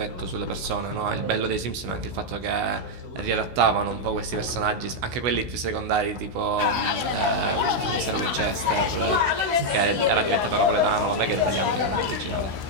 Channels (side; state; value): left; late; 16 ms